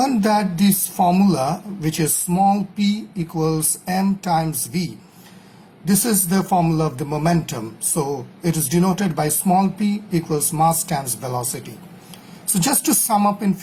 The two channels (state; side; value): identical; both; correlation 1.00